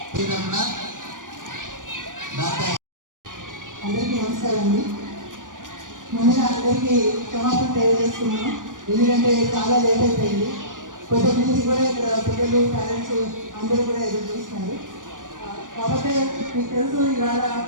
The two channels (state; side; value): late; left; 0.88 ms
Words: అందరికీ నమస్కారం అండి. ముందుగా అందరికీ క్షమాపణ తెలియజేస్తున్నాం, ఎందుకంటే చాలా లేట్ అయిపోయింది. కొత్త నుంచి కూడా ఇక్కడ పిల్లలు పేరెంట్స్ అందరూ కూడా ఎదురు చూస్తున్నారు. కాబట్టి మీకు తెలుసు, ఇవాళ